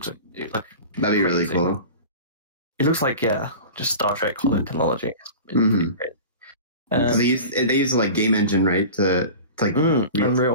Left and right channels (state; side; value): inverted; both; correlation -0.35